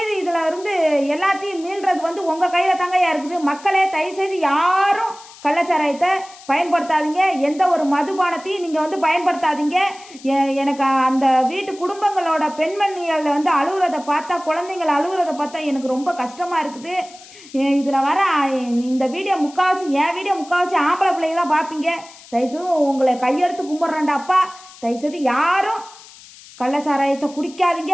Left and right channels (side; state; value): left; noise; hiss, 20 dB below the sound